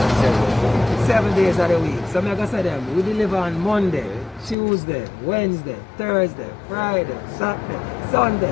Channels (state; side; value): drops out; right; at 4.5 s